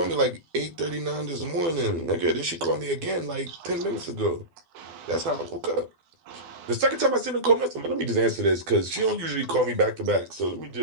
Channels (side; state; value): left; late; 12 ms